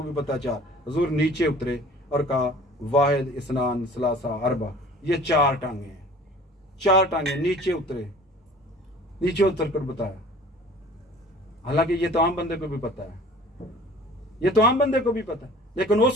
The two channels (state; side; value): normal; both; correlation 0.47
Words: भी पता 4। हुजूर नीचे उतरे और कहा वाहिद इस्नान सलासा अरबा, ये 4 टांगे हैं, 4 टांगे। नीचे उतरे, नीचे उतर कर बताया। हालांकि ये तो आम बंदे को भी पता है, ये तो आम बंदे को भी पता है, लेकिन